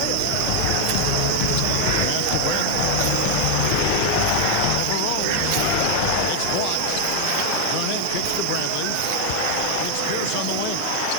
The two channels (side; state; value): both; different; correlation 0.00